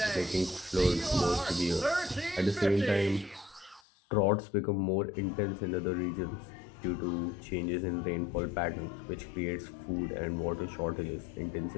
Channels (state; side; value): drops out; right; at 3.8 s